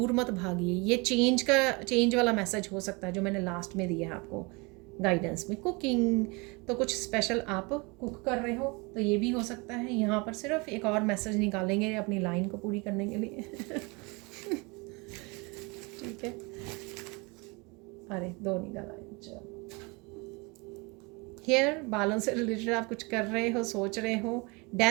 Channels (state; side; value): quieter; left; 28.0 dB